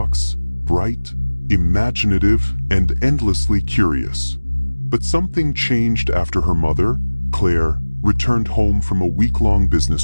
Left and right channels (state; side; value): inverted; both; correlation -1.00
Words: bright, imaginative, and endlessly curious. But something changed after her mother, Claire, returned home from a week-long